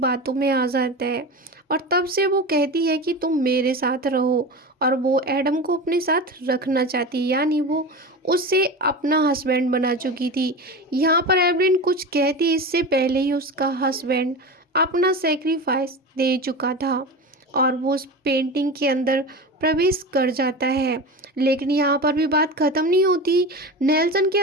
में आ जाता है। और तब से वो कहती है कि तुम मेरे साथ रहो, और वो एडम को अपने साथ रखना चाहती है, यानी वो उससे अपना हस्बैंड बना चुकी थी। यहाँ पर एवलिन कुछ कहती इससे पहले ही उसका हस्बैंड अपना सेक्रीफाइस दे चुका था और वो उस पेंटिंग के अंदर प्रवेश कर जाता है। लेकिन यहाँ पर भी बात ख़त्म नहीं होती। नेल्सन के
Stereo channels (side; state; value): both; normal; correlation 0.27